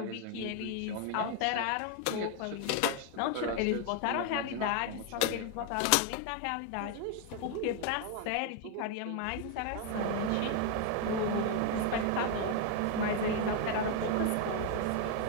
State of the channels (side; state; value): both; different; correlation 0.01